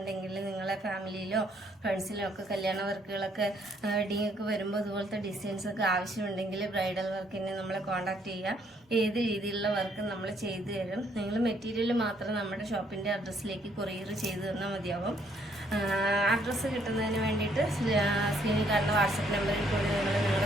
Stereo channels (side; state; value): both; normal; correlation 0.68